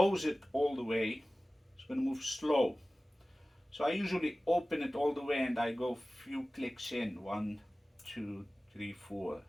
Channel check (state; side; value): normal; both; correlation 0.97